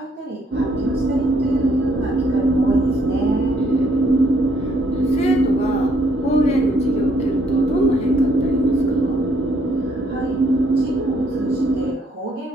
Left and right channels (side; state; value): both; normal; correlation 0.68